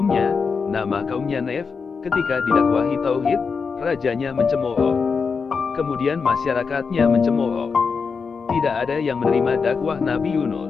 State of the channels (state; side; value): quieter; right; 5.3 dB